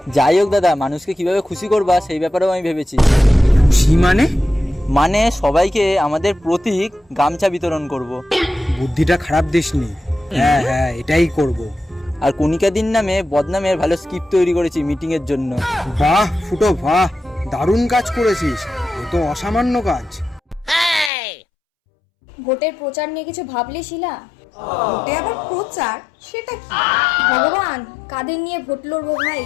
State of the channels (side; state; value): right; drops out; at 21.1 s